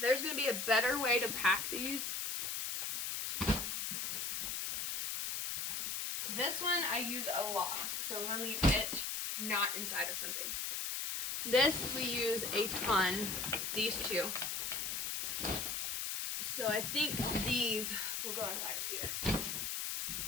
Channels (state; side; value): noise; left; hiss, 2 dB below the sound